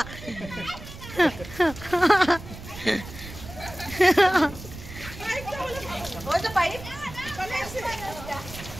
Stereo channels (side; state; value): right; noise; rumble, 13 dB below the sound